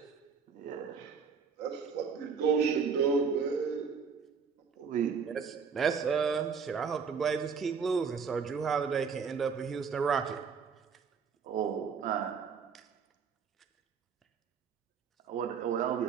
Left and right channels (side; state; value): left; quieter; 6.0 dB